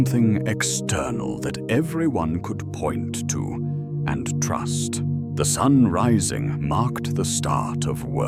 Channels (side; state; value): both; identical; correlation 1.00